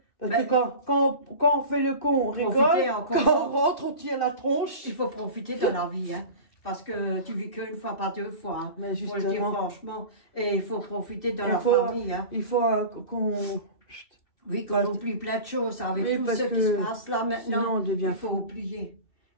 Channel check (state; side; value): late; right; 2.7 ms